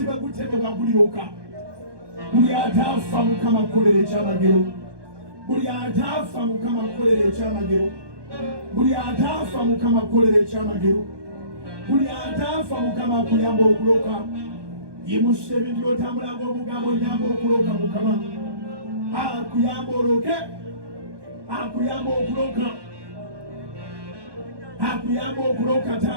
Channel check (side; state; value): left; late; 1.2 ms